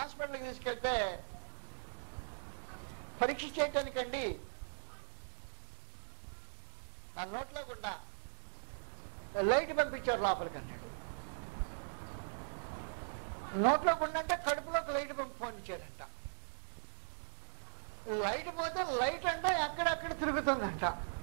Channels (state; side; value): silent; left; 51 dB below the other